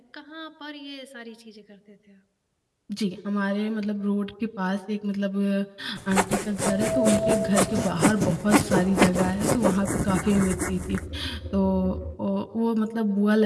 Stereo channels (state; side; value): identical; both; correlation 1.00